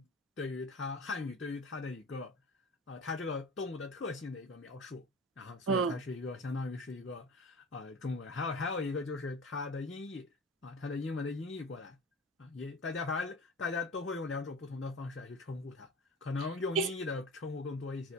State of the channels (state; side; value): normal; both; correlation 0.35